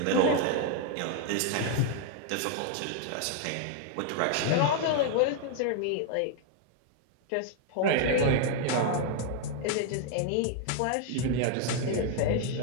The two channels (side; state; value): both; different; correlation 0.00